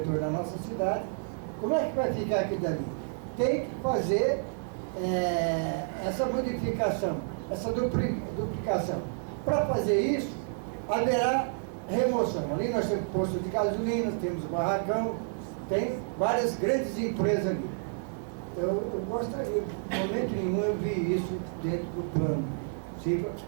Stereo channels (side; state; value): left; silent; 58 dB below the other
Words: da nossa cidade, como é que vai ficar aquilo dali? Tem que fazer essa modificação, essa duplicação. Para fazer isso, haverá remoção. Ali nós temos posto de gasolina, temos barracão, tem várias grandes empresas ali. Eu gostaria, em momento nenhum eu vi isso dentro do plano. Se